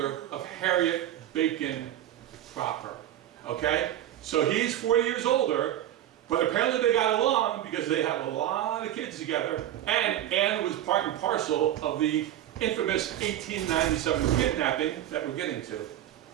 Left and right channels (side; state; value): left; quieter; 12.2 dB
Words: of Harriet Bacon Proper. Okay? So he's 40 years older, but apparently they got along because they have a lot of kids together, and Anne was part and parcel of the infamous 1897 kidnapping that we're getting to.